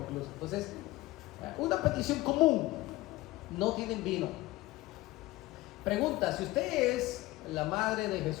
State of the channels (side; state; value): right; quieter; 18.7 dB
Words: Entonces, una petición común, no tienen vino. Pregunta, si usted es la madre de